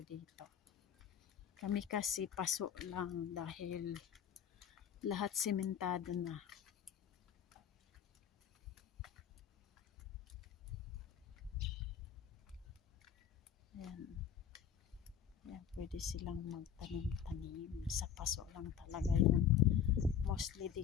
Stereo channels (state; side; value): quieter; right; 8.7 dB